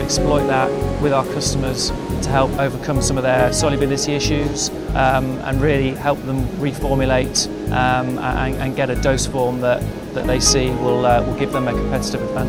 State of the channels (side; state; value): both; identical; correlation 1.00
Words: exploit that with our customers to help overcome some of their solubility issues and really help them reformulate and get a dose form that they see will give them a competitive